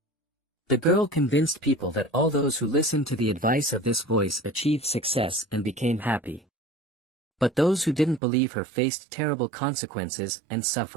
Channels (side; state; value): left; drops out; at 8.2 s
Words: The girl convinced people that all those who listened to the advice of this voice achieved success and became happy. But those who didn't believe her faced terrible consequences and